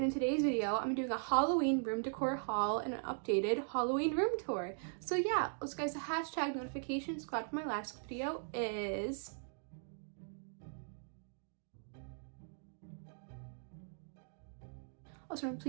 in today's video I'm doing a Halloween room decor haul and an updated Halloween room tour. So yeah, also guys, the hashtag notifications got from my last video is also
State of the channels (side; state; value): left; silent; digital silence